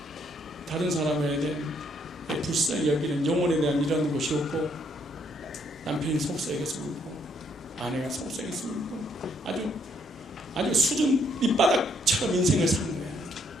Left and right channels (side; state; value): both; normal; correlation 0.70